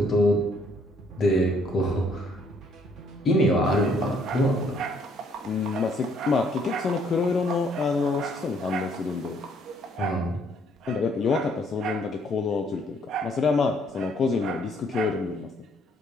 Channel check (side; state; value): both; normal; correlation 0.65